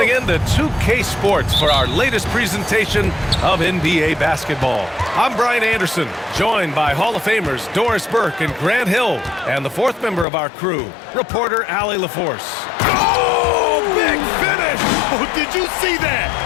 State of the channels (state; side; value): drops out; right; at 10.2 s